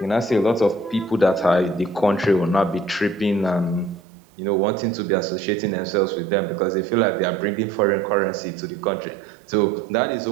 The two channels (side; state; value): left; drops out; at 4.0 s